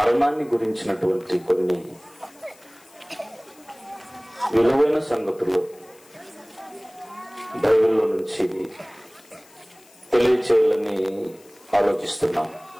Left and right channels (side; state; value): left; noise; hiss, 27 dB below the sound